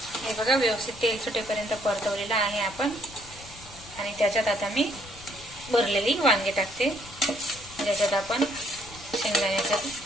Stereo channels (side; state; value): left; noise; rumble, 19 dB below the sound